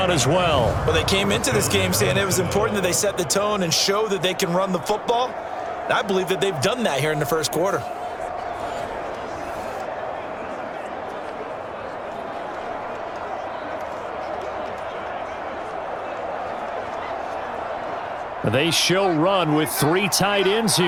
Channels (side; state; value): both; identical; correlation 1.00